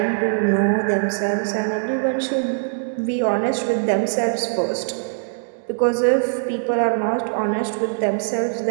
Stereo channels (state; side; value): silent; left; digital silence